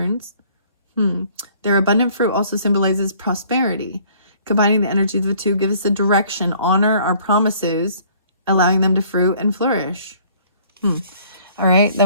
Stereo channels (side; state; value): both; inverted; correlation -0.57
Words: Their abundant fruit also symbolizes prosperity. Combining the energies of the two gives us a direction, honor our promises, allowing them to fruit and flourish. All right,